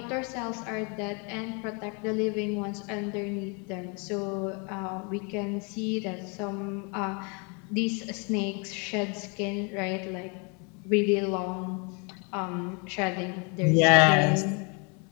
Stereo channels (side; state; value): right; quieter; 33.0 dB